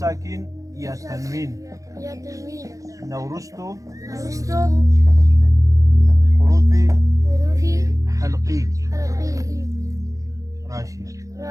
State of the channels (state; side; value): late; left; 0.16 ms